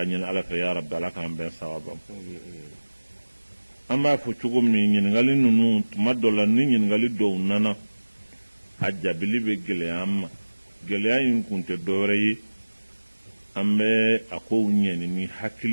alafe ya rabbi alaka ambe sawabam amma fu cugum ni ngali nunu tumadola ni ngali do nana ajabili be gele amma gele ayin kunte doreyi ambe ako nyeni ni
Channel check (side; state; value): both; inverted; correlation -1.00